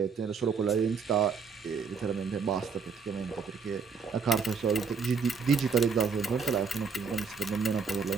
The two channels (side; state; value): left; quieter; 5.5 dB